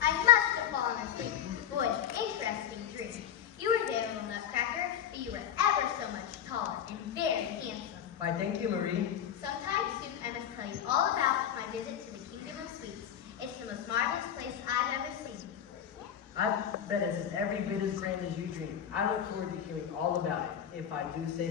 I must have fallen asleep. Boy, interesting dream. You were there, little Nutcracker, but you were ever so much taller and very handsome. Why, thank you, Marie. Sometime soon, I must tell you all about my visit to the Kingdom of Sweets. It's the most marvelous place I've ever seen. I bet it's every bit as grand as you dream. I look forward to hearing all about it, if I do say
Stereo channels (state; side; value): quieter; right; 9.5 dB